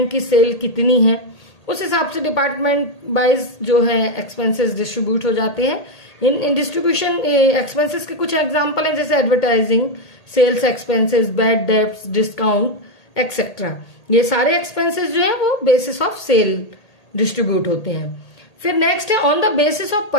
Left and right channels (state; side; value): late; right; 1.8 ms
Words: की सेल कितनी है, उस हिसाब से डिपार्टमेंट वाइज जो है एक्सपेंसेस डिस्ट्रीब्यूट हो जाते हैं। इन डिस्ट्रीब्यूशन एक्सपेंसेस के कुछ एग्जांपल हैं, जैसे advertising, sales expenses, bad debts, discount etcetera. ये सारे एक्सपेंसेस जो है वो बेसिस ऑफ सेल डिस्ट्रीब्यूट होते हैं। फिर नेक्स्ट है on the basis of